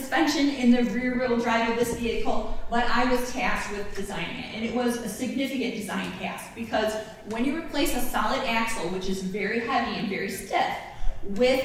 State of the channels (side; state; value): both; identical; correlation 1.00